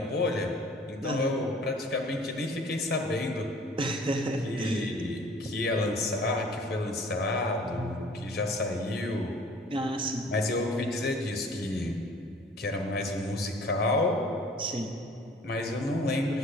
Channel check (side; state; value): both; normal; correlation 0.51